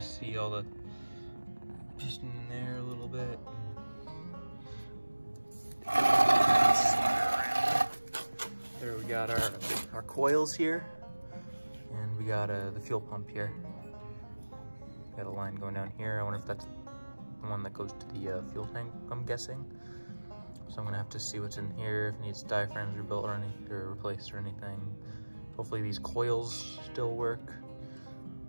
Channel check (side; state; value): both; inverted; correlation -1.00